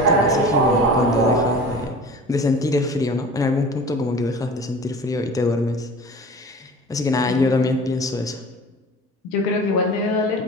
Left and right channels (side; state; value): both; normal; correlation 0.39